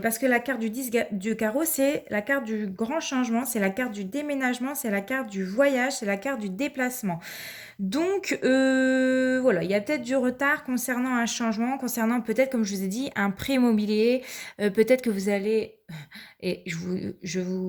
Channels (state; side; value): identical; both; correlation 1.00